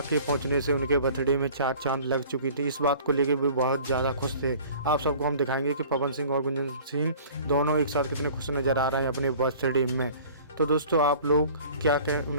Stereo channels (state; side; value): inverted; both; correlation -0.47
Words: पहुंचने से उनके बर्थडे में 4 चांद लग चुकी थी। इस बात को लेकर भी बहुत ज़्यादा खुश थे। आप सबको हम दिखाएंगे कि पवन सिंह और गुंजन सिंह दोनों एक साथ कितने खुश नज़र आ रहे हैं अपने बर्थडे में। तो दोस्तों, आप लोग क्या कहें,